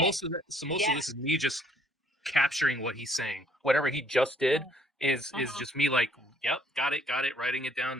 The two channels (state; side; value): normal; both; correlation 0.63